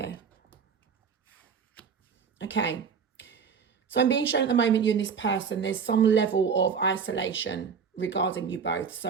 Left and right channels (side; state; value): left; quieter; 6.3 dB